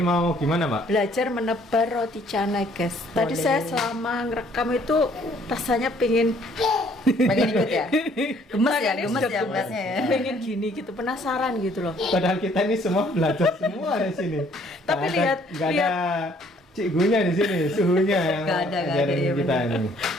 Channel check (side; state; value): both; normal; correlation 0.62